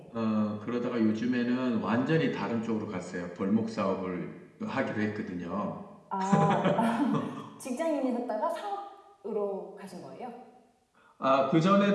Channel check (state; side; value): identical; both; correlation 1.00